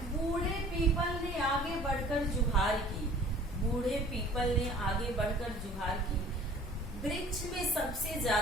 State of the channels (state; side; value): normal; both; correlation 0.49